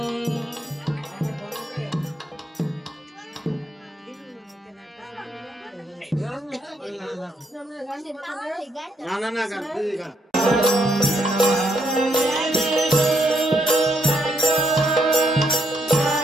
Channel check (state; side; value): normal; both; correlation 0.76